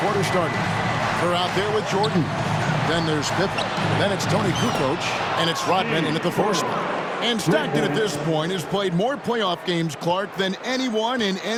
quarter started. They're out there with Jordan. Then there's Pippen. Then it's Tony Kukoc, and it's Rodman in at the 4 spot. And Stockton at this point has played more playoff games, Clark, than anyone in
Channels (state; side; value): identical; both; correlation 1.00